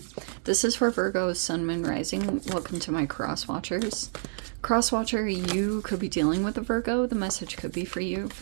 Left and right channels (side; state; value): left; silent; digital silence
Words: This is for Virgo, Sun, Moon, Rising. Welcome to my cross watchers. Cross watcher, you could be dealing with a Virgo. The message could be for you.